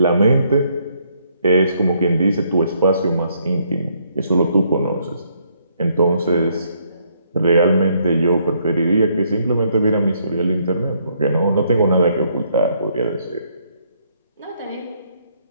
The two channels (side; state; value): both; inverted; correlation -0.71